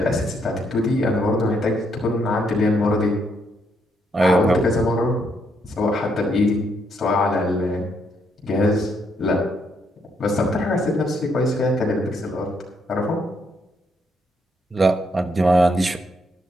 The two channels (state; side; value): normal; both; correlation 0.75